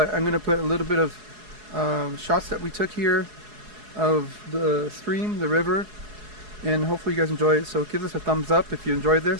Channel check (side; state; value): left; late; 4.7 ms